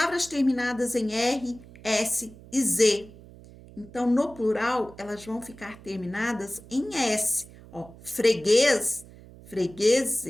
terminadas em R, S e Z. Então, no plural, elas vão ficar terminadas em S. Ó, freguês,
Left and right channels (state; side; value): noise; right; hum, 20 dB below the sound